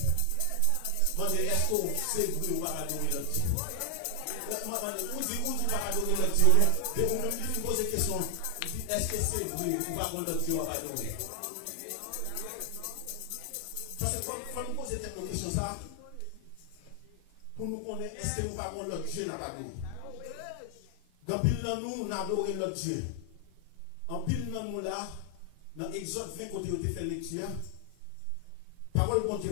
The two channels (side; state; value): both; different; correlation 0.00